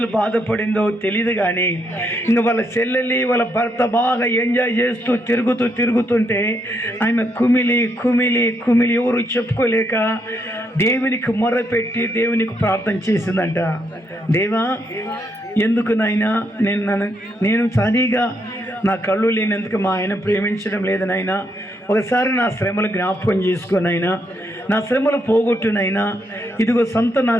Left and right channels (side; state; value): both; normal; correlation 0.77